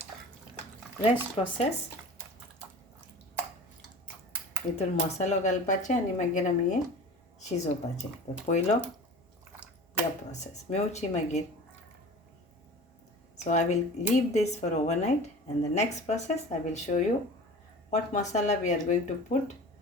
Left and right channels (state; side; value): normal; both; correlation 0.39